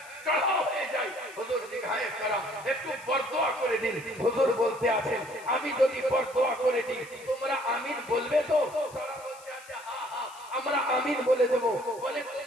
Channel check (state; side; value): noise; left; hiss, 21 dB below the sound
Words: চড়াও হয়ে যায়। হুজুর দিঘায়ে কারাম একটু বরদোয়া করে দিন। হুজুর বলতে আছেন, আমি যদি বরদোয়া করে দিই, তোমরা আমিন বলবে তো? তারা বলতে আছে, হ্যাঁ হ্যাঁ আমরা আমিন বলে দেব। বলে